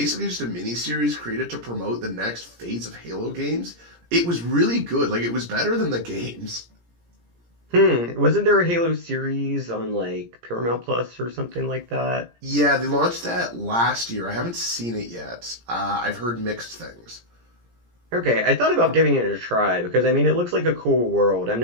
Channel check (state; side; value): late; left; 17 ms